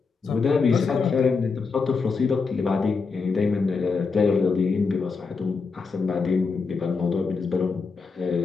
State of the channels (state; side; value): quieter; right; 4.8 dB